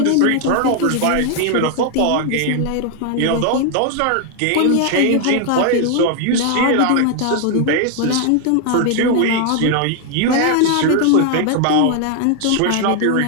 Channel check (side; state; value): both; different; correlation 0.01